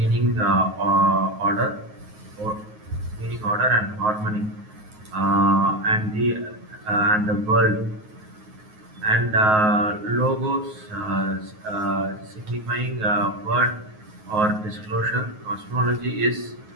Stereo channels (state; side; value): late; left; 9.4 ms